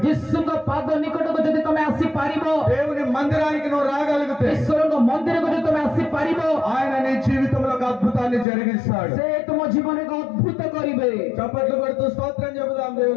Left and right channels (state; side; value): drops out; right; at 8.5 s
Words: ଯୀଶୁଙ୍କ ପାଦ ନିକଟକୁ ଯଦି ତମେ ଆସିପାରିବ, దేవుని మందిరానికి నువ్వు రాగలిగితే, ଈଶ୍ୱରଙ୍କ ମନ୍ଦିରକୁ ଯଦି ତମେ ଆସିପାରିବ, ఆయన నీ జీవితంలో ఒక అద్భుతాన్ని జరిగిస్తాడు। ସେ ତୁମ ଜୀବନରେ ଏକ ଅଦ୍ଭୁତ କରିବେ। చప్పట్లు కొడుతూ స్తోత్రం చెబుదాం